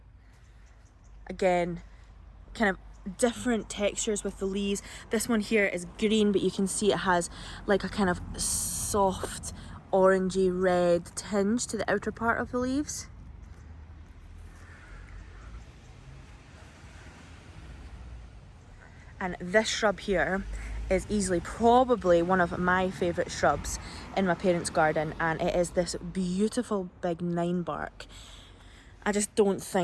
Again, kind of different textures with the leaves. This one here is green, but you can see it has like a kind of soft orangey red tinge to the outer part of the leaves. And this shrub here is easily probably one of my favourite shrubs in my parents' garden, and it is this beautiful big 9-bark. I just don't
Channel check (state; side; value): identical; both; correlation 1.00